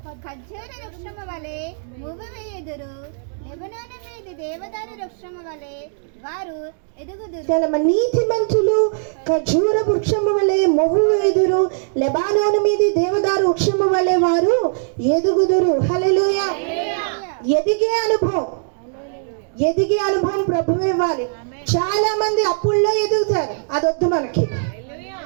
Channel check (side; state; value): left; silent; digital silence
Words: ఖర్జూర వృక్షము వలె మువ్వవేయుదురు, లెబనోను మీది దేవదారు వృక్షము వలె వారు ఎదుగుదురు. నీతిమంతులు ఖర్జూర వృక్షము వలె మొవ్వు వేయుదురు, లెబానోను మీది దేవదారు వృక్షము వలె వారు ఎదుగుదురు. హల్లెలూయా. ఎదిగే అనుభవం ప్రభువే ఇవ్వాలి. చాలా మంది అప్పుల్లో ఎదుగుతారు, అదొద్దు మనకి.